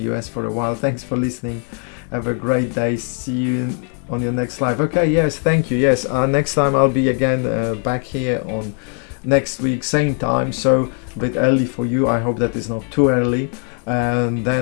US for a while. Thanks for listening. Have a great day. See you on your next live. Okay, yes, thank you. Yes, next time I'll be again back here on next week, same time. So a bit early for you. I hope that is not too early. And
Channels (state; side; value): quieter; right; 39.6 dB